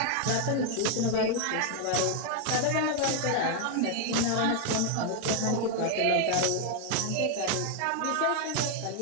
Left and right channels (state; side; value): different; both; correlation 0.00